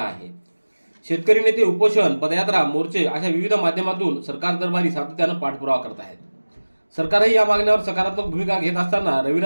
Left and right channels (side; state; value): both; inverted; correlation -1.00